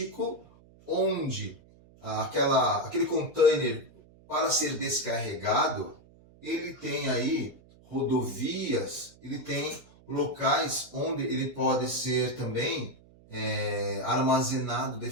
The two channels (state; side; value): noise; right; hum, 26 dB below the sound